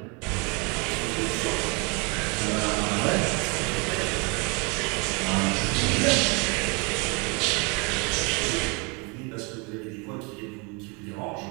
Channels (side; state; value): left; quieter; 31.1 dB